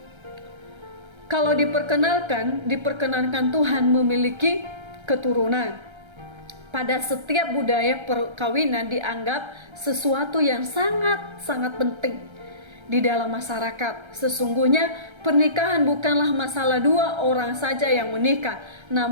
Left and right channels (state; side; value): late; left; 1.3 ms